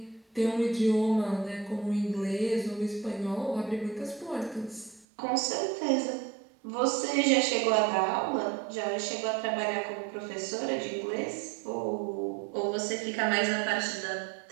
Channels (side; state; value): left; drops out; at 5.1 s